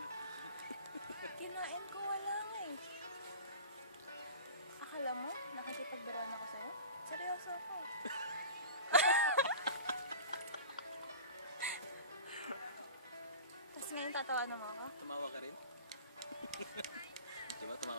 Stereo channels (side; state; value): both; inverted; correlation -0.36